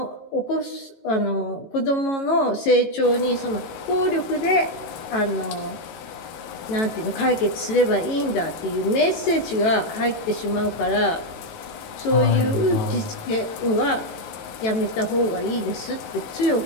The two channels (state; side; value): late; right; 18 ms